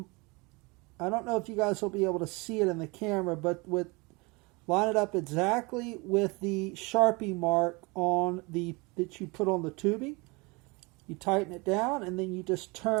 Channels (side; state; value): left; quieter; 27.0 dB